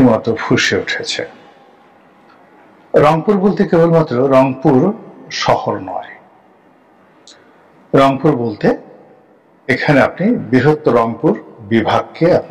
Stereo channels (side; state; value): both; identical; correlation 1.00